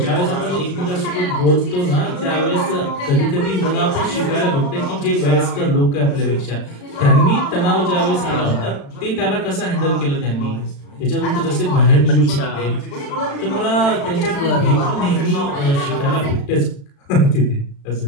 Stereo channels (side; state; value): right; late; 36 ms